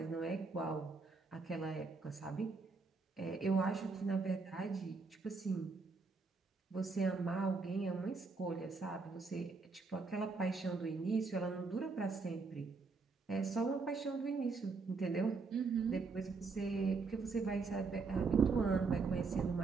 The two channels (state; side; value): quieter; left; 4.3 dB